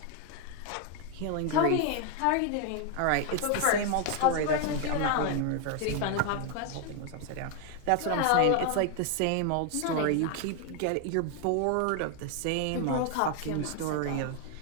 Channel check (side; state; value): both; different; correlation 0.01